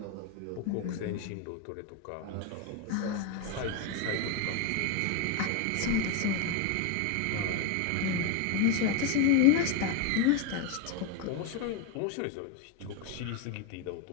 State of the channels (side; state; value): both; different; correlation 0.02